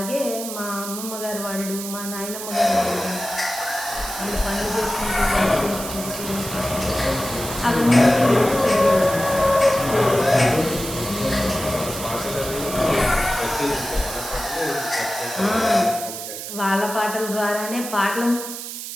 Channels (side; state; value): right; noise; hiss, 8 dB below the sound